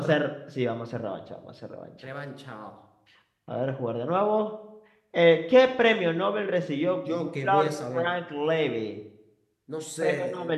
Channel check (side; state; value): both; identical; correlation 1.00